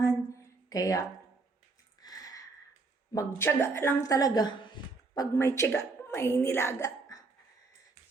Kaya, magtiyaga lang talaga. Pag may tiyaga, may nilaga.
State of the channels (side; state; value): left; quieter; 3.8 dB